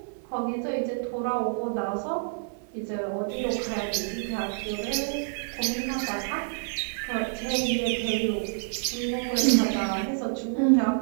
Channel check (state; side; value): silent; left; digital silence